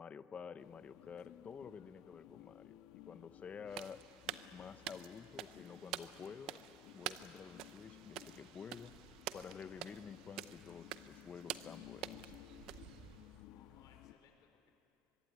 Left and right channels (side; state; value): both; normal; correlation 0.45